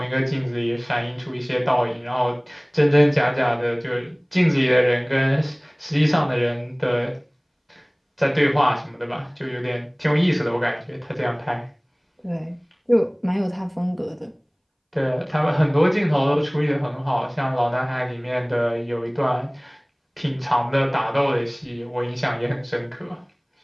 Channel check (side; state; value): both; identical; correlation 1.00